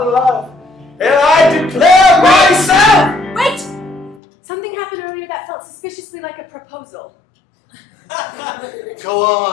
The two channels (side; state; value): right; drops out; at 4.2 s